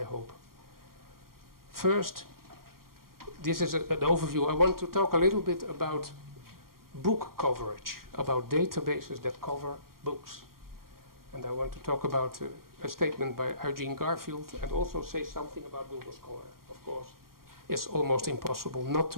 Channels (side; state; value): left; late; 0.92 ms